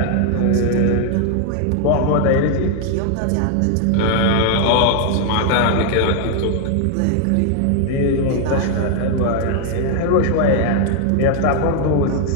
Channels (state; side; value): different; both; correlation 0.00